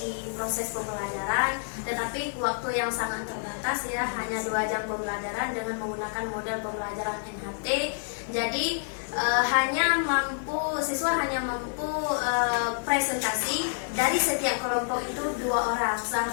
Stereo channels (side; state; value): right; silent; 59 dB below the other